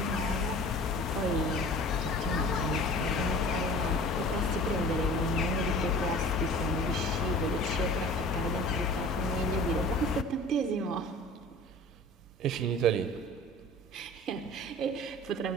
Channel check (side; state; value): both; normal; correlation 0.42